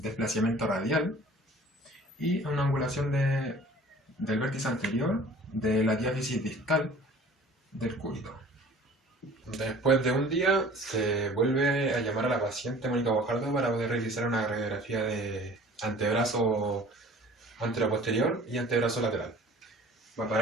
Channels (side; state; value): both; normal; correlation 0.47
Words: radial y una angulación del vértice anterior de la diáfisis distal del cúbito. Después de un día se vuelve a llamar a la paciente Mónica Bojardo para poder realizar una radiografía de antebrazo anteroposterior y antebrazo lateral. Bueno,